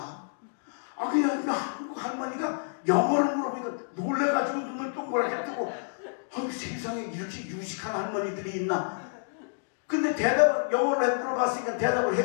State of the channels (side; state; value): right; silent; digital silence